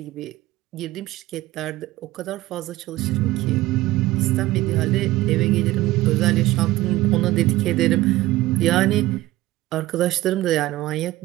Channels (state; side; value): quieter; left; 17.3 dB